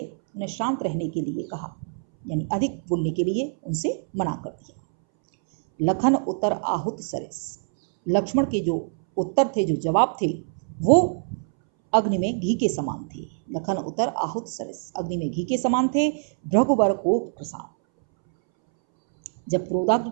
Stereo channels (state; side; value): silent; left; 62 dB below the other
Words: उन्हें शांत रहने के लिए कहा, यानी अधिक बोलने के लिए उनसे मना कर दिया। लखन उत्तर आहुत सरस, लक्ष्मण के जो उत्तर थे, जो जवाब थे, वो अग्नि में घी के समान थे। लखन उत्तर आहुत सरस, अग्नि में घी के समान थे। भृगुबर को प्रसाद, जब क्रोधाग्नि